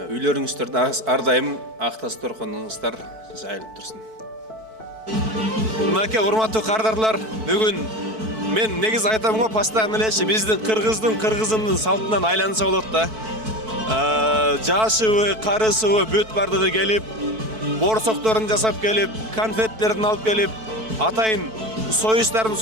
ар дайым ак тас торконуңуздар жайылып турсун. Мынакей урматтуу кардарлар, бүгүн мен негиз айтам го постоянно элечи биздин кыргыздын салтынан айланса болот да. Жашыбы, карысыбы бүт бардыгы келип, борсокторун жасап келип, конфеттерин алып келип, атайын союштарын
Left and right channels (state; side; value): late; left; 4.6 ms